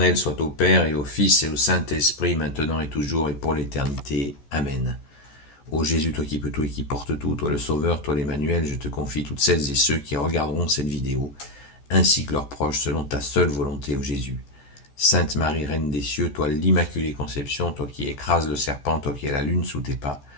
soit au Père et au Fils et au Saint-Esprit, maintenant et toujours et pour l'éternité. Amen. Ô Jésus, toi qui peux tout et qui portes tout, toi le Sauveur, toi l'Emmanuel, je te confie toutes celles et ceux qui regarderont cette vidéo, ainsi que leurs proches, selon ta seule volonté, ô Jésus. Sainte Marie, Reine des cieux, toi l'Immaculée Conception, toi qui écrases le serpent, toi qui as la lune sous tes pas,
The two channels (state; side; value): late; right; 14 ms